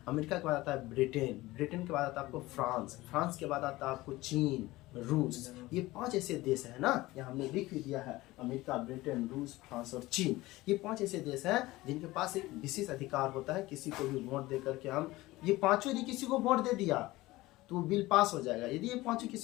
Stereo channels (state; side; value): quieter; right; 18.9 dB